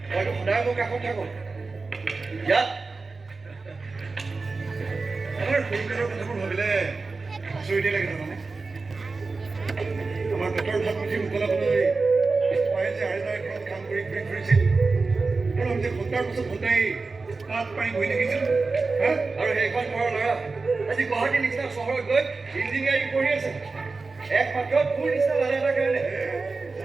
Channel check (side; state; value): left; quieter; 4.0 dB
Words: মইতো সদায় মোৰ কাষত থাকোঁ ইয়াত আমাৰ সৰুকালৰ কথাবোৰ ভাবিলে আচৰিতে লাগে জানানে আমাৰ পেটৰ ভাত মুঠি উতলাবলৈ মায়ে যে আইতাৰ ঘৰত কাম কৰি ঘূৰি ফুৰিছিল আৰু আমি যে ঘণ্টাৰ পিছত ঘণ্টাই তাত পাই বহি থাকিছিলোঁ আৰু সেইখন ঘৰৰ ল'ৰা আজি গুৱাহাটীৰ নিচিনা চহৰত গৈ ইঞ্জিনিয়াৰিং পঢ়ি আছে একমাত্ৰ তোৰ নিচিনা ল'ৰা এটাৰ কাৰণে